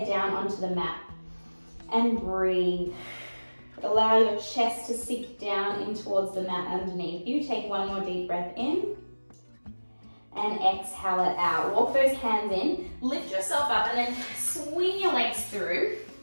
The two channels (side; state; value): both; inverted; correlation -1.00